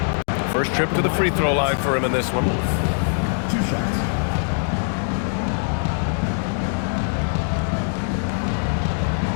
him. First trip to the free throw line for him in this one. 2 shots.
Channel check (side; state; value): right; silent; 64 dB below the other